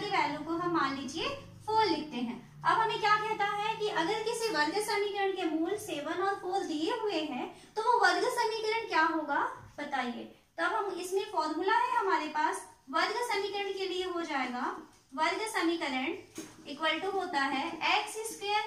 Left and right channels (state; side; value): identical; both; correlation 1.00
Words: वैल्यू को हम मान लीजिए 4 लिखते हैं। अब हमें क्या कहता है कि अगर किसी वर्ग समीकरण के मूल 7 और 4 दिए हुए हैं तो वो वर्ग समीकरण क्या होगा बताइए। तब हम इसमें फॉर्मूला है हमारे पास, वर्ग समीकरण के लिए हो जाएगा वर्ग समीकरण इक्वल टू होता है